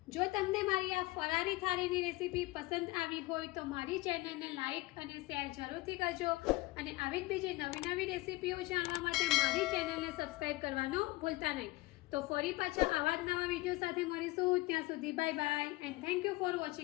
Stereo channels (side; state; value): right; quieter; 20.5 dB